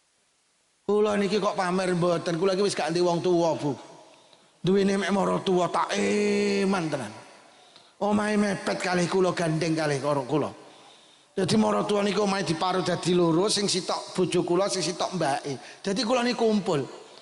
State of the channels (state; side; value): identical; both; correlation 1.00